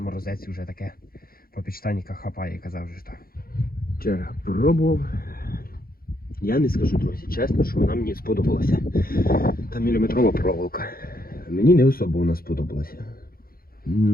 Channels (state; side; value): late; right; 0.43 ms